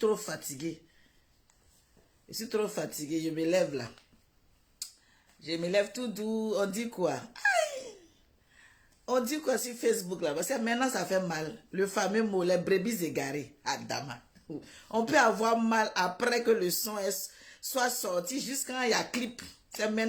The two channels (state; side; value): identical; both; correlation 1.00